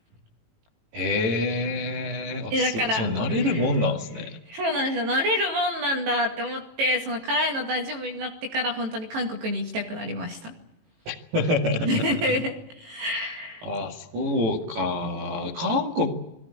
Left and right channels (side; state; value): left; late; 18 ms